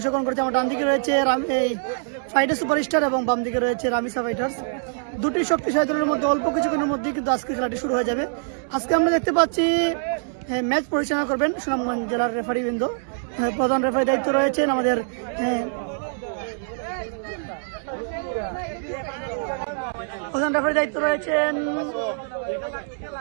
করেছে, আমার ডান দিকে রয়েছে এই ফাইটার সুপারস্টার এবং বাম দিকে রয়েছে রামিসা ফাইটার্স। দুটি শক্তিশালী দলের মধ্যে অল্প কিছুক্ষণের মধ্যেই কিন্তু আজকে খেলাটি শুরু হয়ে যাবে। আজকে আমরা দেখতে পাচ্ছি ম্যাচ পরিচালনা করবেন সুনামগঞ্জ জেলার রেফারিবৃন্দ। প্রধান রেফারি দায়িত্ব রয়েছেন আমাদের প্রধান রেফারি দায়িত্ব রয়েছেন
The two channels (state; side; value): silent; left; digital silence